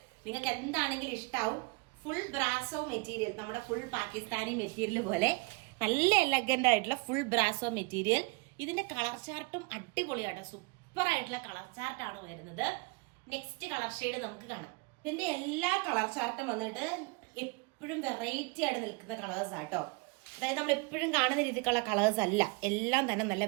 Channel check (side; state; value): left; quieter; 28.5 dB